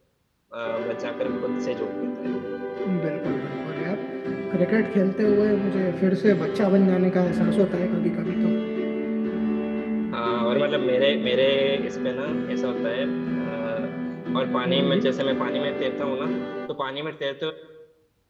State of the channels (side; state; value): both; identical; correlation 1.00